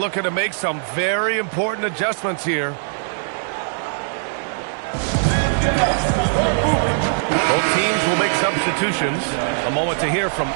to make some very important adjustments here. Both teams will make substitutions. A moment to hear from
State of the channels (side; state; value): left; silent; digital silence